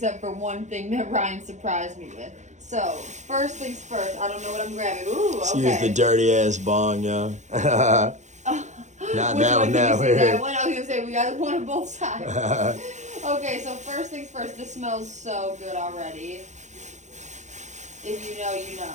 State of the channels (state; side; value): late; left; 0.34 ms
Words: for one thing that Ryan surprised me with. So, first things first. I don't know what I'm grabbing. Ooh, okay. Use the dirty ass bong, yo. Not Which that one one, can that you see that one. one? I was going to say, we got one on both sides. Okay, so first things first. This smells so good already. If you know, you